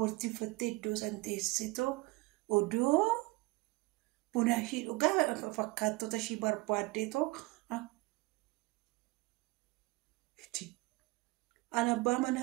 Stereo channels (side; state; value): left; quieter; 21.9 dB